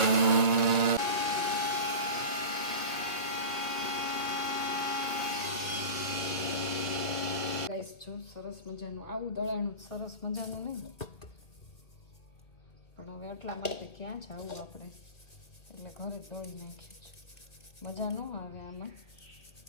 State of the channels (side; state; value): right; late; 1.7 ms